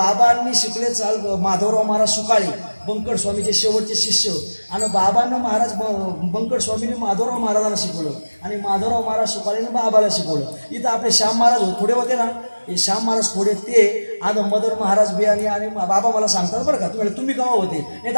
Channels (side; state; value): both; inverted; correlation -1.00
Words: शिकले चाल माधवराव महाराज सुकाळे बंकट स्वामीचे शेवटचे शिष्य. आणि बाबांना महाराज बंकट स्वामीने माधवराव महाराजांना शिकवलं आणि माधवराव महाराज सुकाळेने बाबाला शिकवलं. इथं आपले श्याम महाराज थोडे होते ना, हे श्याम महाराज थोडे ते आज मदर महाराज बियाणी आणि बाबा मला सांगतात बरं का. तुम्ही केव्हा होते नाही